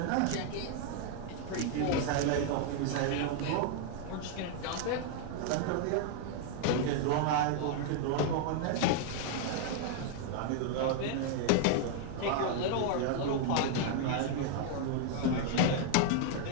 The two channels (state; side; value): different; both; correlation 0.00